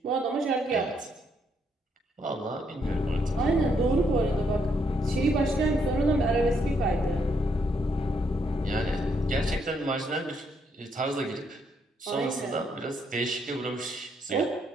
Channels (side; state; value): both; normal; correlation 0.74